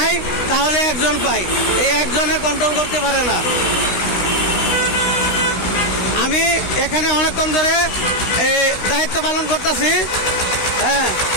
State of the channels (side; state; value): right; late; 16 ms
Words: তাহলে একজন পাই, এই একজনে কন্ট্রোল করতে পারে না। আমি এখানে অনেকক্ষণ ধরে এই দায়িত্ব পালন করতেছি। হ্যাঁ